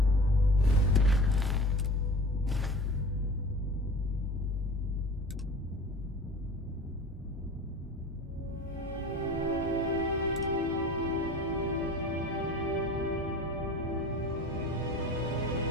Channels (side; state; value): both; normal; correlation 0.38